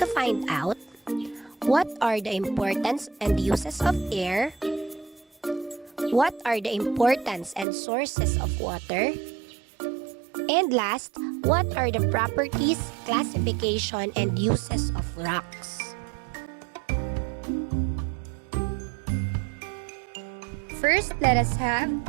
to find out what are the importance and uses of air, what are the importance and sources of water, and last, what are the properties, classification, and uses of rocks? First, let us have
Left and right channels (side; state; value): left; drops out; at 7.7 s